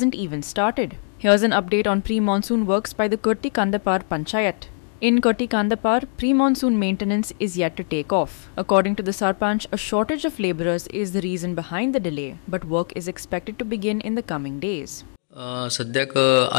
even started. Here's an update on pre-monsoon works by the Kurti Kandapar Panchayat. In Kurti Kandapar, pre-monsoon maintenance is yet to take off. According to the Sarpanch, a shortage of labourers is the reason behind the delay, but work is expected to begin in the coming days. सद्याक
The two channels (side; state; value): right; silent; digital silence